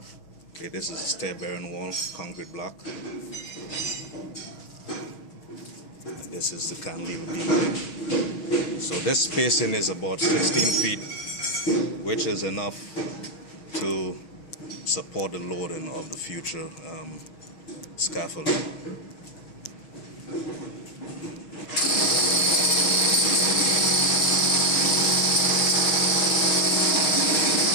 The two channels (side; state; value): right; late; 6.3 ms